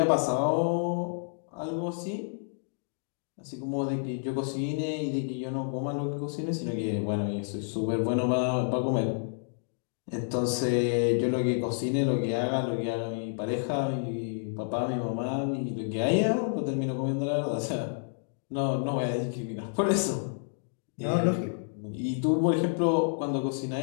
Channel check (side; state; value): right; silent; digital silence